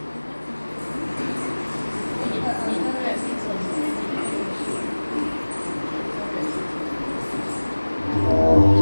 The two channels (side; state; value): both; inverted; correlation -1.00